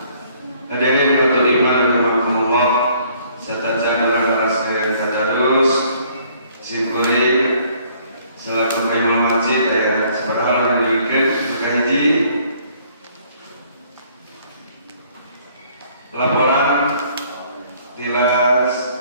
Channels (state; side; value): inverted; both; correlation -0.61